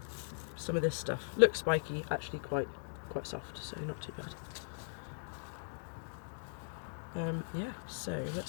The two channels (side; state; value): right; silent; digital silence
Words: some of this stuff. Looks spiky, actually quite soft, so not too bad. Yeah, so